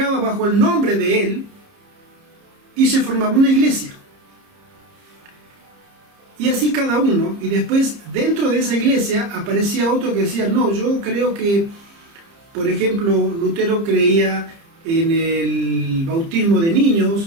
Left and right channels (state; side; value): late; left; 30 ms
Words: bajo el nombre de él y se formaba una iglesia. Y así cada uno, y después dentro de esa iglesia aparecía otro que decía: no, yo creo que, por ejemplo, Lutero creía en el bautismo de